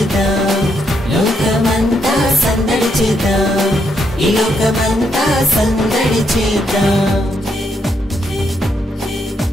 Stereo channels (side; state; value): both; normal; correlation 0.77